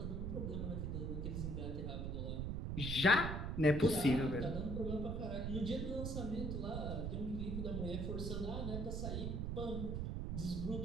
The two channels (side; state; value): right; noise; rumble, 2 dB below the sound